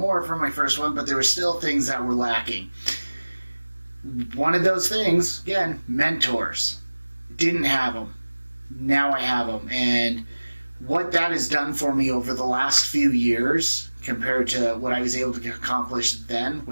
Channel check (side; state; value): both; inverted; correlation -1.00